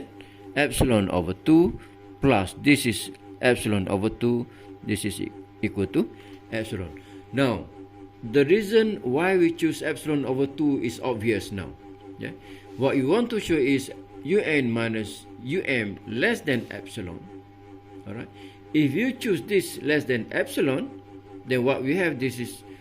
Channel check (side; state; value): both; identical; correlation 1.00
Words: epsilon over 2 plus this is epsilon over 2, this is equal to epsilon. Now the reason why we choose epsilon over 2 is obvious now. Yeah? What you want to show is un minus less than epsilon. Alright. If you choose this less than epsilon, then what we have, this is